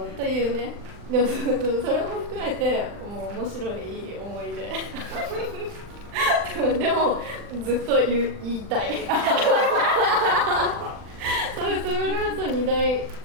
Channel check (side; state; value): left; late; 40 ms